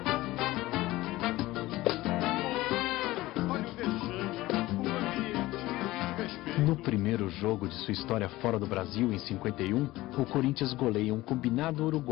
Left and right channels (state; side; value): quieter; right; 18.0 dB